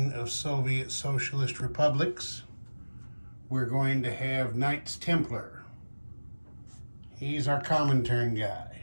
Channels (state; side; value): inverted; both; correlation -1.00